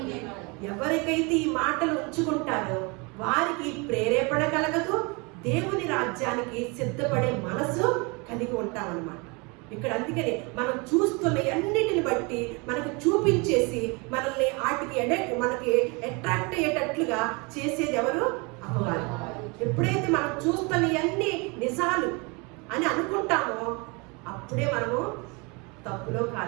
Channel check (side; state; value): left; quieter; 29.3 dB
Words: ఎవరికైతే ఈ మాటలు ఉంచుకుంటారో వారికి ప్రేరేపణ కలగదు, దేవుని రాజ్యానికి సిద్ధపడే మనసు కలిగి ఉంటామన్నమాట. ఇక్కడ అందుకని మనం చూస్తున్న అన్నిటిని బట్టి మనకు చూపించేసి మనల్ని మనకి అట్రాక్ట్ అయ్యేటట్లుగా చేసేది ఎవరు? అపవాది. ఎప్పుడైతే మనం చూస్తున్న అన్ని నిజాలు అని అనుకుంటామో అప్పుడే మనము తప్పులో